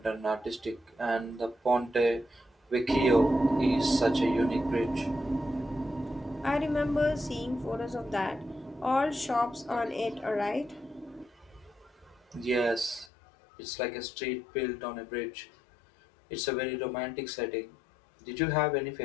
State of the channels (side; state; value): right; drops out; at 13.1 s